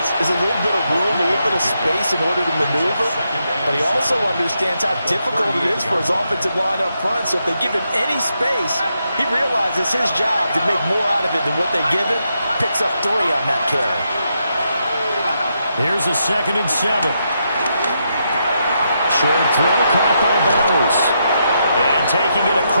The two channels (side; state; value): both; inverted; correlation -0.81